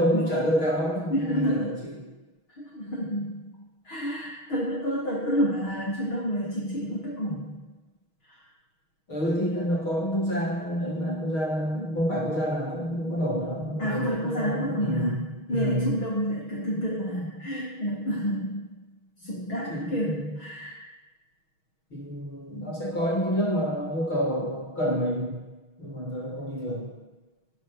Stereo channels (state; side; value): late; right; 6.3 ms